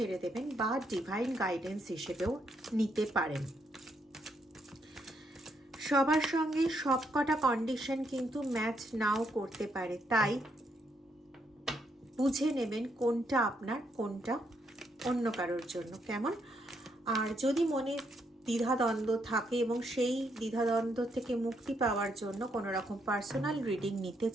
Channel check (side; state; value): both; normal; correlation 0.76